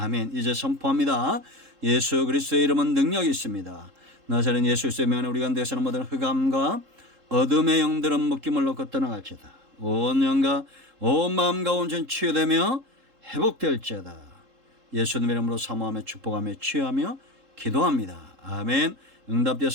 이제 선포합니다. 예수 그리스도의 이름은 능력이 있습니다. 나사렛 예수 그리스도의 명에 우리 가운데서는 모든 흑암과 어둠의 영들은 묶임을 놓고 떠나갈지어다. 온 영과 온 마음과 온전 치유되며 회복될지어다. 예수님의 이름으로 사모하며 축복하며 치유하며 기도합니다. 아멘.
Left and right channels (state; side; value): late; left; 3.7 ms